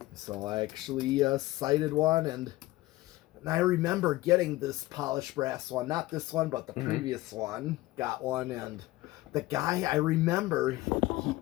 So I actually cited one, and I remember getting this polished brass one, not this one, but the previous one. Got one, and the guy, I remember,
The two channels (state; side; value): quieter; right; 18.4 dB